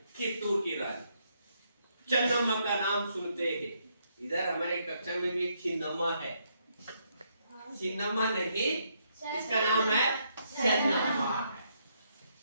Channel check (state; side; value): inverted; both; correlation -0.75